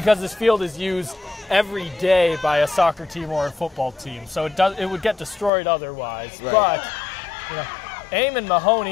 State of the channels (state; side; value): drops out; right; at 5.5 s